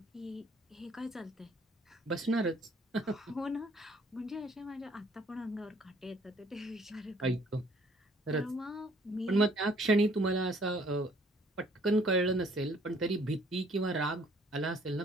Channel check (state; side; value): normal; both; correlation 0.60